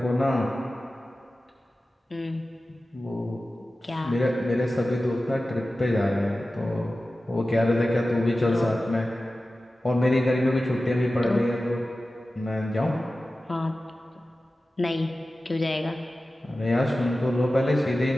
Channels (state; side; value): normal; both; correlation 0.95